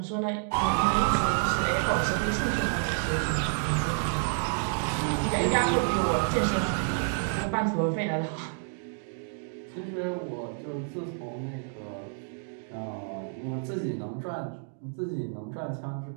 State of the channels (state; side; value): silent; left; 58 dB below the other